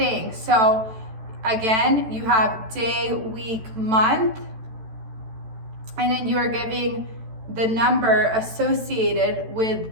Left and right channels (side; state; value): left; late; 14 ms